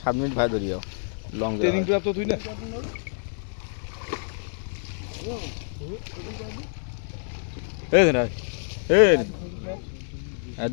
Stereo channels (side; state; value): right; silent; digital silence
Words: 7 মিনিট ভাই ধরিও লং ট্রেনিং প্রাপ্ত তুই না এই না এই আর